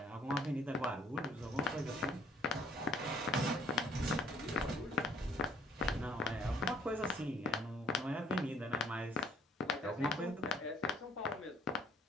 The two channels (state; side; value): normal; both; correlation 0.61